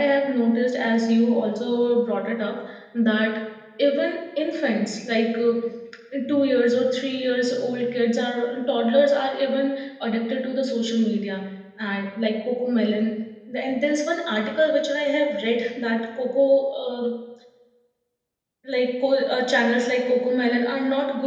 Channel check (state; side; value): identical; both; correlation 1.00